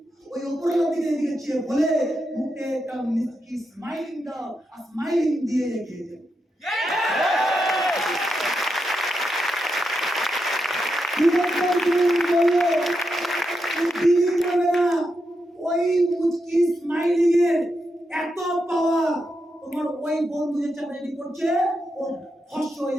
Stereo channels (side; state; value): both; normal; correlation 0.85